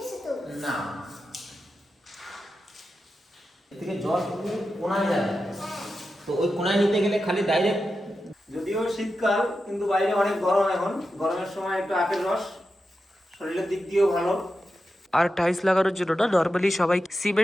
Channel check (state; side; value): normal; both; correlation 0.90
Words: তো না এদিকে জল পুরো কোনায় যাবে, তো ওই কোনায় নিতে গেলে খালি ডাইরেক্ট। যদিও শীতকাল কিন্তু বাইরে অনেক গরম, এখন গরমের সময় একটু আপেল রস শরীরের দিক দিয়েও ভালো। আর টাইলস লাগানোর জন্য না নর্মালি সবাই